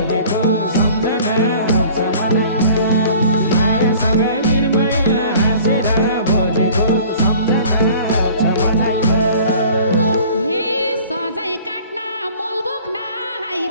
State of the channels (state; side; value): inverted; both; correlation -0.47